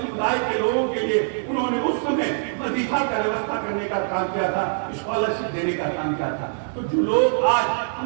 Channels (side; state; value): left; silent; 63 dB below the other